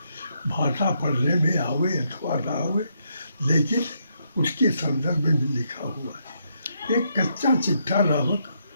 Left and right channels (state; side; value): inverted; both; correlation -0.77